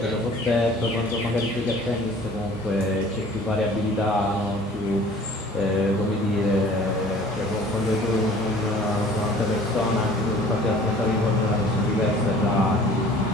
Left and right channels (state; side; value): normal; both; correlation 0.49